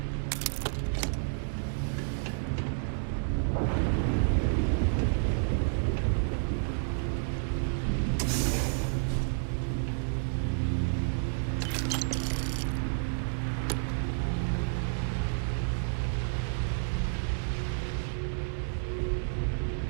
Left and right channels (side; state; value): left; silent; digital silence